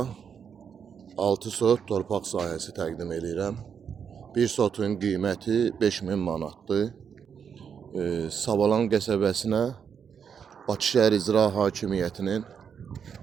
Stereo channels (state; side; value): quieter; left; 7.2 dB